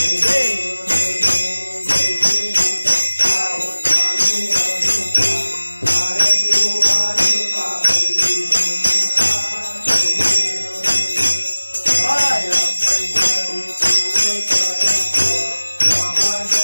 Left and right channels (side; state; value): both; inverted; correlation -1.00